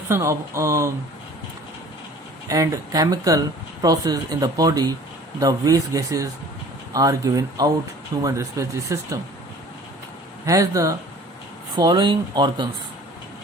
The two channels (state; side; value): normal; both; correlation 0.48